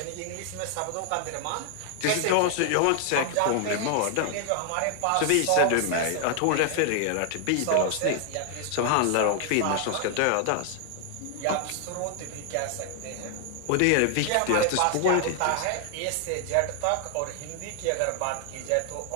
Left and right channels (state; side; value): different; both; correlation 0.00